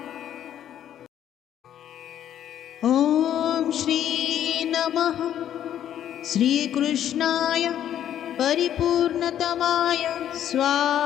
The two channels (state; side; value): quieter; right; 10.7 dB